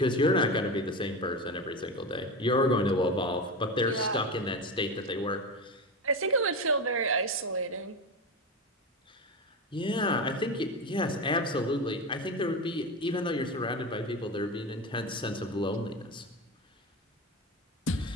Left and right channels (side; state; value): both; normal; correlation 0.21